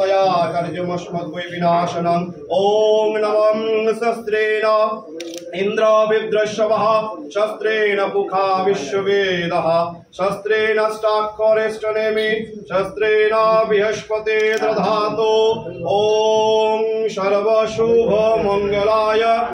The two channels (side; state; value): both; identical; correlation 1.00